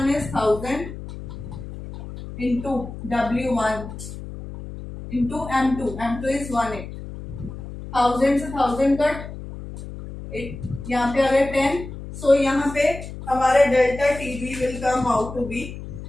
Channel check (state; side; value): noise; left; hum, 11 dB below the sound